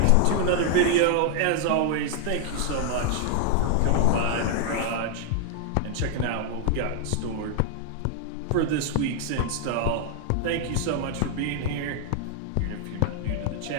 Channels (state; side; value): different; both; correlation 0.00